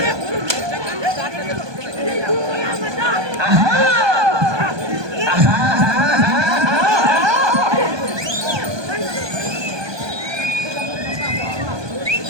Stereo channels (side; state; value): left; late; 1.2 ms